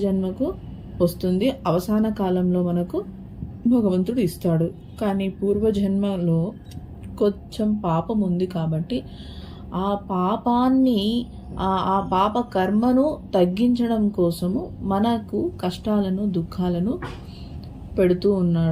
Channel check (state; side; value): identical; both; correlation 1.00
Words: జన్మకు వస్తుంది, అవసాన కాలంలో మనకు భగవంతుడు ఇస్తాడు. కానీ పూర్వజన్మలో కొంచెం పాపం ఉంది కాబట్టి ఆ పాపాన్ని ఆ పాప కర్మను తగ్గించడం కోసము మనకు కష్టాలను దుఃఖాలను పెడుతూ